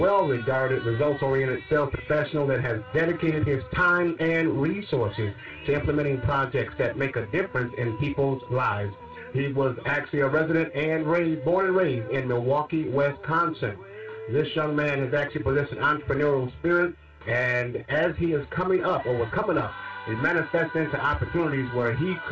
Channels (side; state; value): both; identical; correlation 1.00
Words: results-oriented sales professional that has dedicated his time and resources to implementing projects that make a difference in people's lives. He was actually a resident and born and raised in Milwaukee, Wisconsin. This young man has actually possessed an entrepreneurial spirit, and as he is coming up, or was coming up, it manifests into opportunities where he